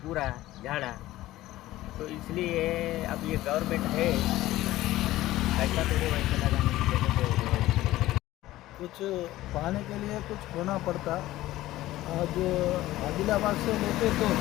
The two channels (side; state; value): right; quieter; 16.0 dB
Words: पूरा झाड़ा, तो इसलिए अब ये गवर्नमेंट है कैसा तोड़े वैसे लगाने की ज़रूरत है। कुछ पाने के लिए कुछ खोना पड़ता। आज आदिलाबाद से लेके तो